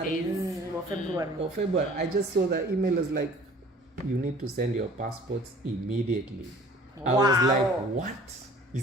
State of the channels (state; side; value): normal; both; correlation 0.50